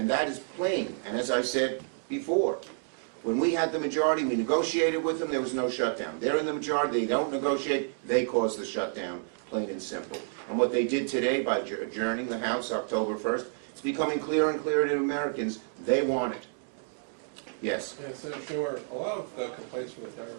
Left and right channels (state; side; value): silent; left; digital silence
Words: that is plain. And as I said before, when we had the majority, we negotiated with them, there was no shutdown. They're in the majority, they don't negotiate, they cause the shutdown, plain and simple. And what they did today by adjourning the House October 1st, it's becoming clearer and clearer to Americans, they want it. Yes? Yeah, Senator Schumer, a lot of the complaints from the